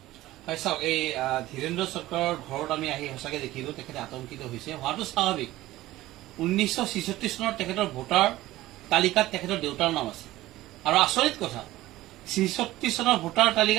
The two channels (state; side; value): quieter; left; 16.5 dB